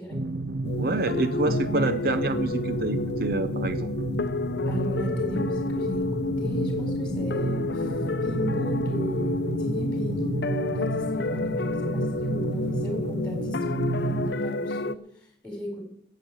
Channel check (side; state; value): both; normal; correlation 0.45